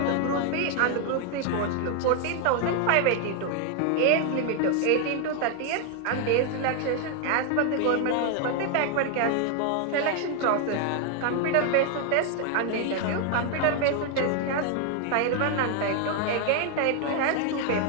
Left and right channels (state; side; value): different; both; correlation 0.01